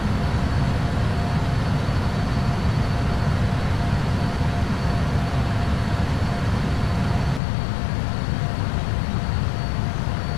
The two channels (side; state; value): right; drops out; at 7.4 s